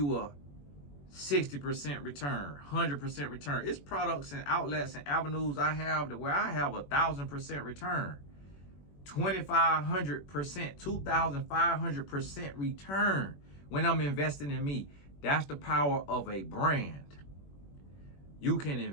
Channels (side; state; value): right; late; 21 ms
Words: a 60% return, 100% return. It's products and outlets and avenues I have to where I have 1,000% return, 2,500%, 2,500% return when I'm investing in me. That's the power of a brand. You can